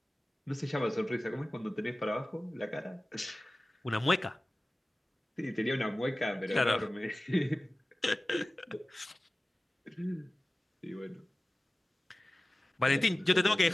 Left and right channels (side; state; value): both; normal; correlation 0.96